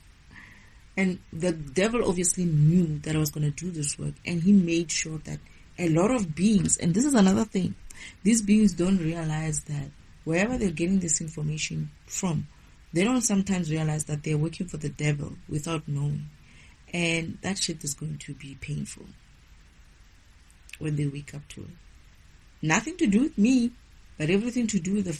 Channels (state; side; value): identical; both; correlation 1.00